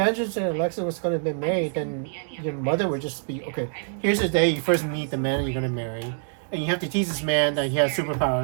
and Alexis was going to be married, then your mother would just be, okay, here's the day you first meet the man you're going to marry. And you have to teach this man that he has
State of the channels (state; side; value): silent; left; digital silence